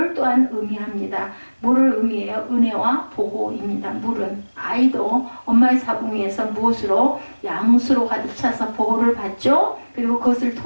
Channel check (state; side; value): inverted; both; correlation -1.00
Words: 또한 의미합니다. 뭐를 의미해요? 은혜와 보호입니다. 물은 아이도 엄마의 자궁 위에서 무엇으로? 양수로 가득 차서 보호를 받죠. 그리고 그것을